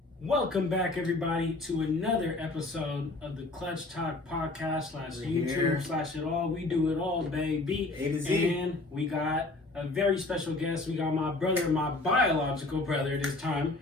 Welcome back, everybody, to another episode of the Clutchtalk podcast / YouTube / it all. We do it all, baby. A to Z. And we got a very special guest. We got my brother, my biological brother this time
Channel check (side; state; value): right; quieter; 3.0 dB